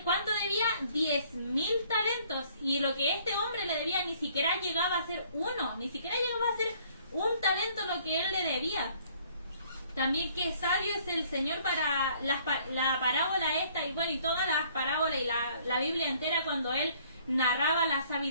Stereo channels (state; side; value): inverted; both; correlation -0.60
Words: cuánto debía? 10.000 talentos. Y lo que este hombre le debía ni siquiera llegaba a ser uno, ni siquiera llegaba a ser un talento lo que Él le debía. También qué sabio es el Señor para la parábola esta, y bueno, y todas las parábolas y la Biblia entera, cuando Él narraba la